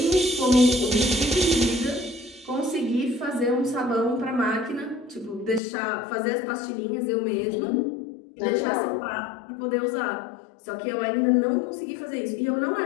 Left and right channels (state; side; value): drops out; right; at 5.6 s